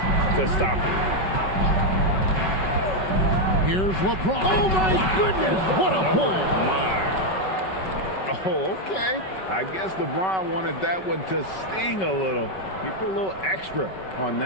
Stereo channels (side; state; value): right; late; 5.3 ms